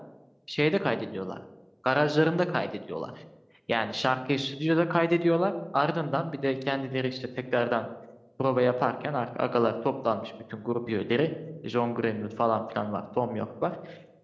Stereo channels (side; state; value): both; identical; correlation 1.00